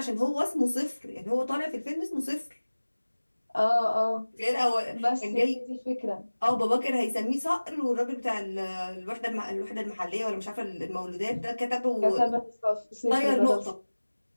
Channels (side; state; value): both; inverted; correlation -1.00